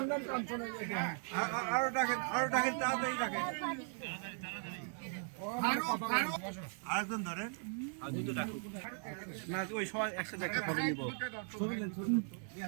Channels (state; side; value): silent; left; 52 dB below the other